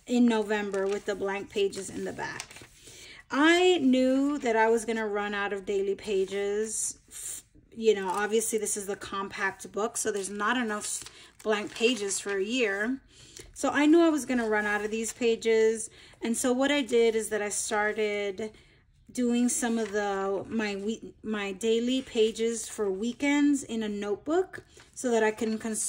in November with the blank pages in the back. I knew that I was going to run out of daily pages. You know, obviously this is the compact book, so there's not enough blank pages for a year. So I knew I was going to run out of these pages. And so what I did is that I started doing some of my daily pages for weekends in a notebook so that I can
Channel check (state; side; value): identical; both; correlation 1.00